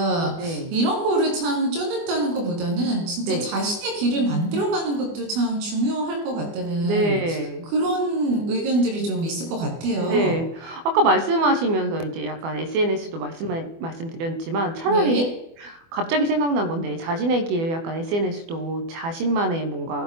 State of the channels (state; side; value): late; left; 24 ms